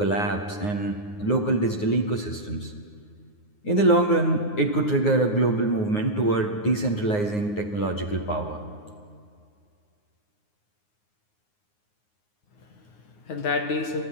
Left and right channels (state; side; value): late; right; 9.6 ms